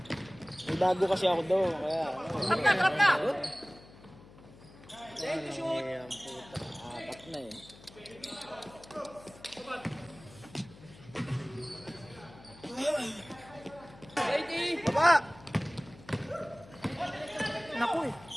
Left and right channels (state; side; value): noise; left; hum, 21 dB below the sound